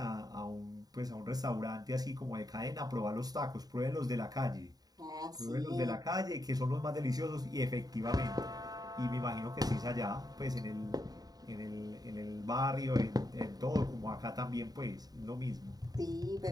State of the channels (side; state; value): left; late; 0.18 ms